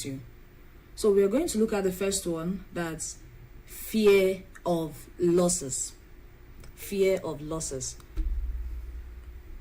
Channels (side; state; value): both; identical; correlation 1.00